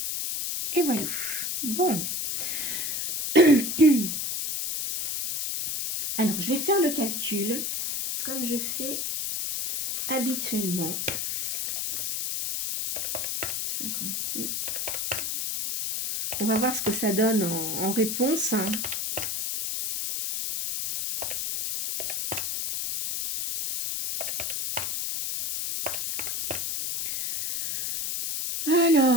Et voilà. Bon. Alors, je vais faire le calcul, comme je fais habituellement. 52. On va voir ce que ça donne en réponse.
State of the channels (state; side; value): noise; left; hiss, 2 dB below the sound